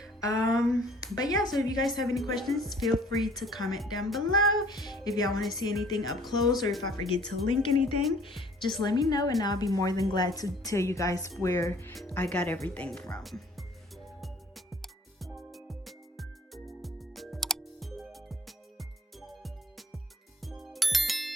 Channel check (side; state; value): both; normal; correlation 0.55